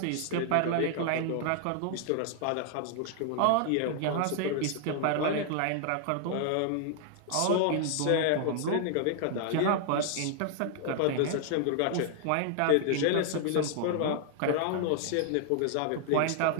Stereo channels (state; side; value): different; both; correlation 0.00